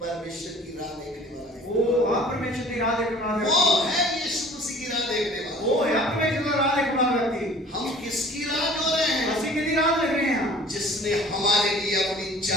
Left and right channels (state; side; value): normal; both; correlation 0.48